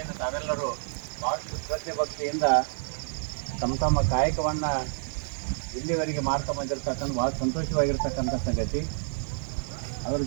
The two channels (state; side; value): silent; left; 58 dB below the other